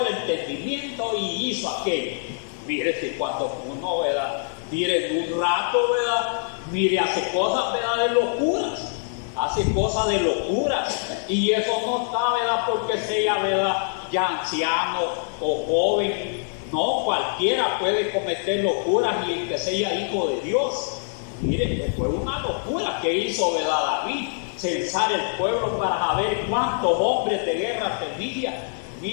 entendimiento y hizo aquello. Mire, si cuando uno, ¿verdad?, mire, en un rato, ¿verdad?, mire, hace cosas, ¿verdad?, de locuras. Hace cosas de locuras. Y eso no está, ¿verdad?, porque sea, ¿verdad?, ya anciano o joven. No, cualquiera puede cometer locuras y el que sea hijo de Dios. Mire, fue una locura que hizo, ¿verdad?, David, censar el pueblo para saber cuántos hombres de guerra tenía.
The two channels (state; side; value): silent; right; 62 dB below the other